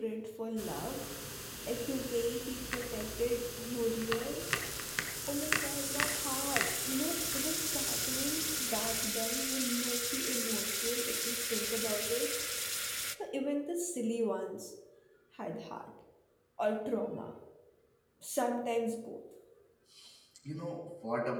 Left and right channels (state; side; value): identical; both; correlation 1.00